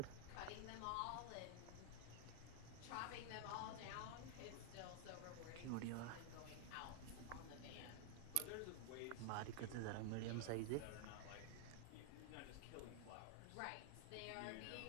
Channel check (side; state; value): both; different; correlation 0.00